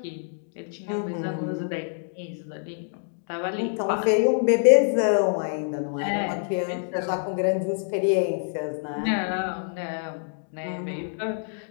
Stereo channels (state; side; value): silent; right; digital silence